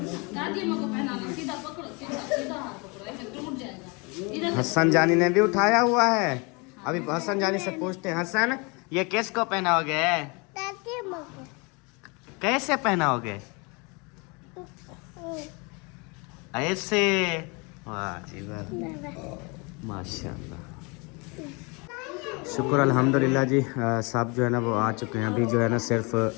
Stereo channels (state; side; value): quieter; right; 29.6 dB